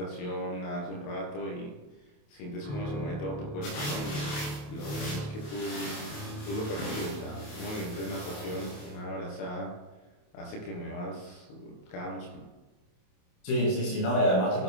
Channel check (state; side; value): late; right; 28 ms